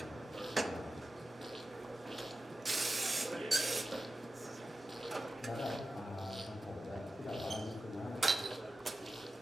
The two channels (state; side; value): normal; both; correlation 0.93